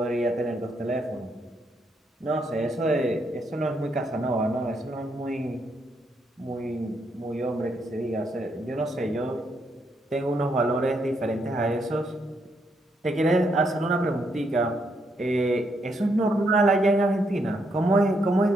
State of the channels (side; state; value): both; normal; correlation 0.76